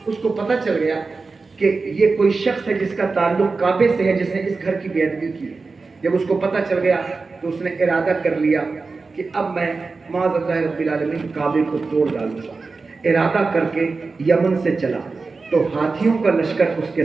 اس کو پتہ چل گیا کہ یہ کوئی شخص ہے جس کا تعلق کعبے سے ہے، جس نے اس گھر کی بے ادبی کی ہے۔ جب اس کو پتہ چل گیا تو اس نے ارادہ کر لیا کہ اب میں معاذ اللہ رب العالمین کعبے کو توڑ ڈالوں گا۔ ارادہ کر کے یمن سے چلا تو ہاتھیوں کا لشکر اس کے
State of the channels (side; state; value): left; quieter; 4.1 dB